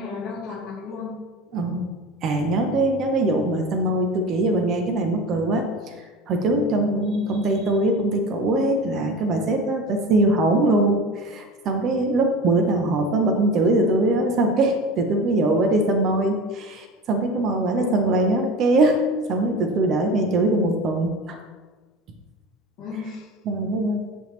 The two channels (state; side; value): normal; both; correlation 0.33